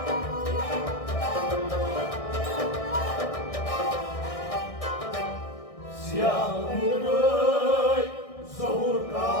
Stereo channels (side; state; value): right; late; 1.6 ms